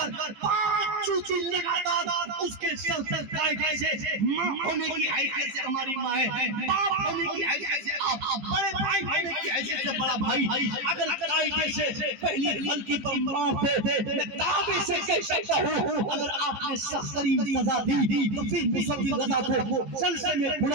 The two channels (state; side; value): late; left; 15 ms